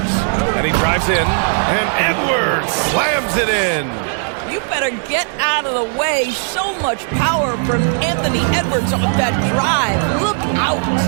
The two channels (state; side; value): silent; left; 56 dB below the other